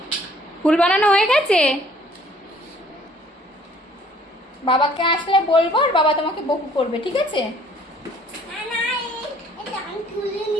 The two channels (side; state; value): both; normal; correlation 0.58